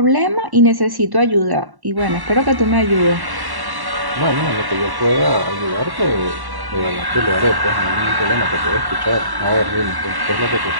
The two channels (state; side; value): late; left; 1.1 ms